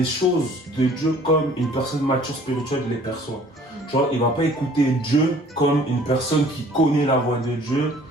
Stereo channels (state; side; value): normal; both; correlation 0.54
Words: choses de Dieu comme une personne mature spirituelle les perçoit. Tu vois, il va pas écouter Dieu comme une personne qui connaît la voix de Dieu